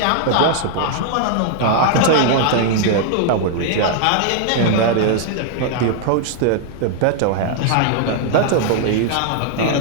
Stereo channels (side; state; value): both; different; correlation -0.01